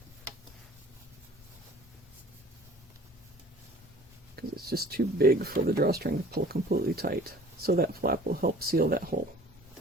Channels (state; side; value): normal; both; correlation 0.49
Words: Because it's just too big for the drawstring to pull completely tight. So that flap will help seal that hole.